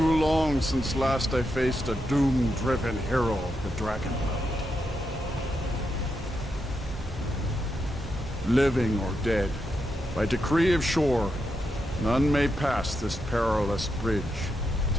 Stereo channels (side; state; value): both; normal; correlation 0.84